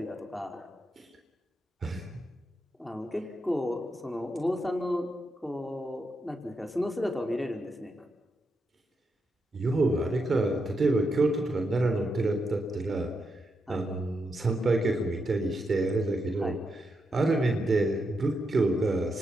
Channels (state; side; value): normal; both; correlation 0.84